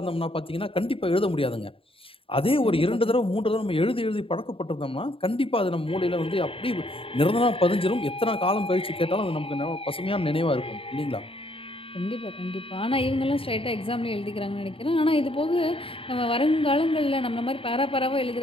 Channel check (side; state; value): right; late; 0.27 ms